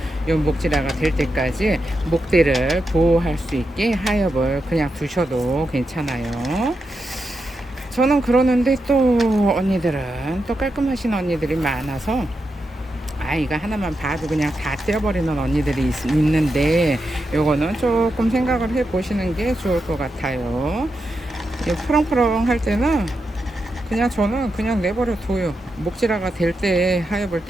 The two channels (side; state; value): both; normal; correlation 0.86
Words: 요 목질화가 될 때까지 목대를 보호할 수 있게 하엽을 그냥 두셔도 괜찮아요. 저는 그러는데 또 언니들은 또 깔끔하신 언니들이 많아서 이거 하나만 봐도 그냥 다 떼어버리는 언니들이 있는데 요거는 조금 생각을 해 보시는 게 좋을 것 같아요. 이 푸렁푸렁 할 때는 그냥 저는 그냥 내버려 둬요. 목질화가 될 때 하엽을